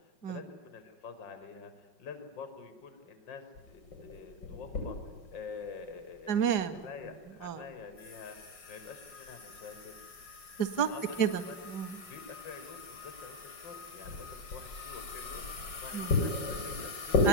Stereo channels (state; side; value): late; right; 5.5 ms